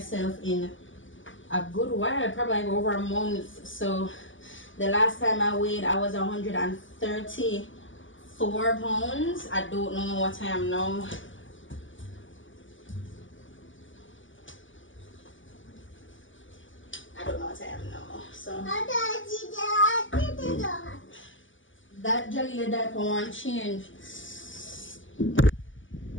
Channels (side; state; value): right; late; 0.56 ms